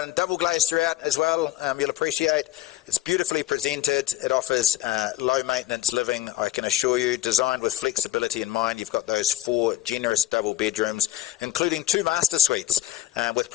double glazed throughout as well, you'll appreciate. It's beautifully presented. It offers low maintenance living, I can assure you, designed with flexibility in mind. You've got those 4 generous double bedrooms, including 2 master suites with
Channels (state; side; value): quieter; right; 14.3 dB